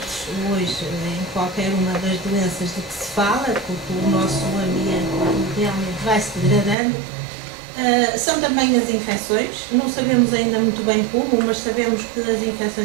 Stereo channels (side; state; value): left; drops out; at 6.8 s